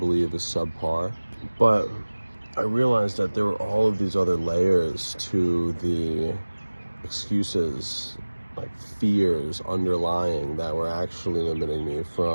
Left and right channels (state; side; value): inverted; both; correlation -1.00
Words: is subpar. But I realized that there were all of these other layers to the excuses, like fears underlying, that were actually limiting me